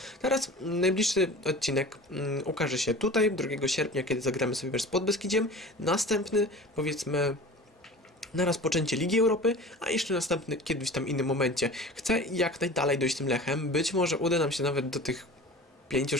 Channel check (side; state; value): both; normal; correlation 0.38